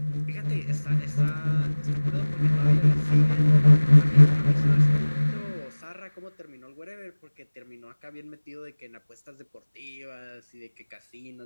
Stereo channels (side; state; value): both; inverted; correlation -1.00